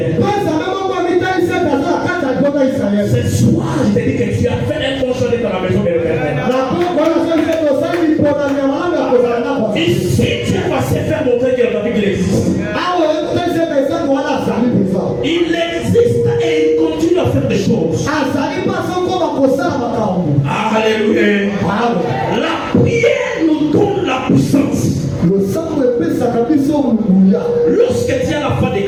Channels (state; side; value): identical; both; correlation 1.00